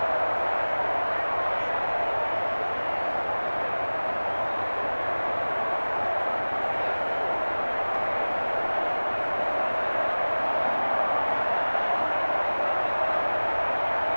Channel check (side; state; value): both; inverted; correlation -1.00